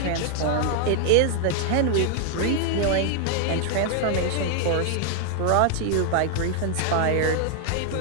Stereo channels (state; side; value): different; both; correlation 0.00